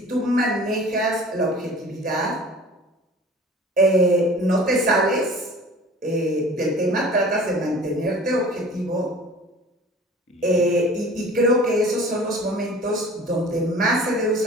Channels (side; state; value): both; normal; correlation 0.44